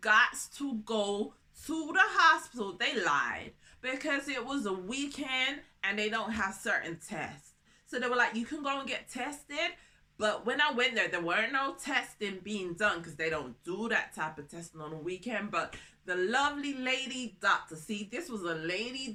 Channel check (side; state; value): both; identical; correlation 1.00